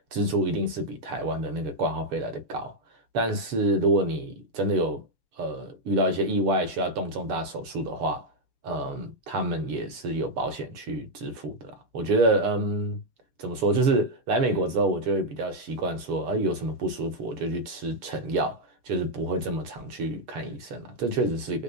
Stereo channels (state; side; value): late; left; 6.9 ms